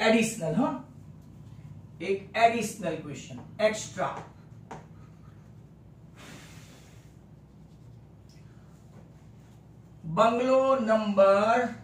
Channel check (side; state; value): both; identical; correlation 1.00